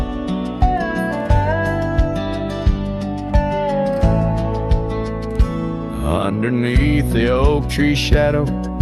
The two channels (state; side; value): identical; both; correlation 1.00